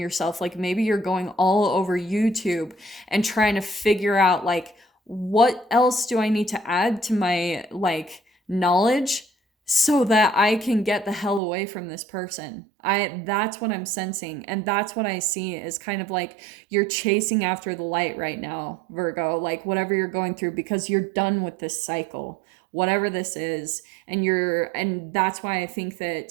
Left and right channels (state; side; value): drops out; left; at 11.4 s